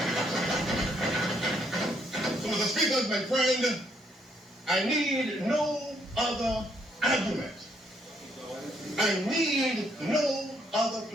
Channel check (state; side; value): normal; both; correlation 0.71